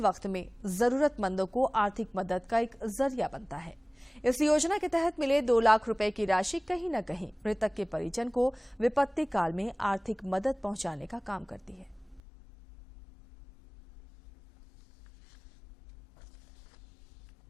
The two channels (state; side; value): drops out; right; at 12.2 s